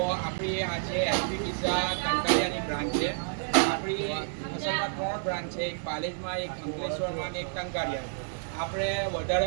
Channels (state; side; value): silent; left; digital silence